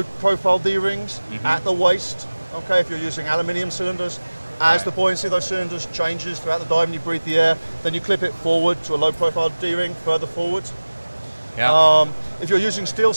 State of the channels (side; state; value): both; inverted; correlation -1.00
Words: profile D-rings at the waist. Okay, if you're using aluminium cylinders, as the buoyancy of those cylinders changes throughout the dive and you breathe the air, then you clip it forward to a low profile D-ring further forward. Yeah. If you're using steel